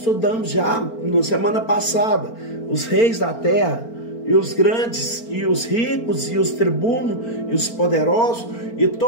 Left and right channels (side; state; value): right; late; 4.4 ms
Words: já na semana passada. Os reis da terra, e os grandes, e os ricos, e os tribunos, e os poderosos, e